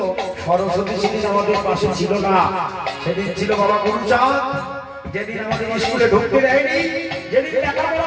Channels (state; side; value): identical; both; correlation 1.00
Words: সরস্বতী সেদিন আমাদের পাশে ছিল না, সেদিন ছিল বাবা গুরুচাঁদ, যেদিন আমাদের স্কুলে ঢুকতে দেয়নি, যেদিন লেখাপড়া